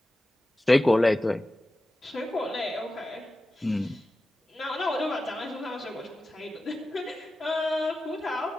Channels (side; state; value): both; normal; correlation 0.94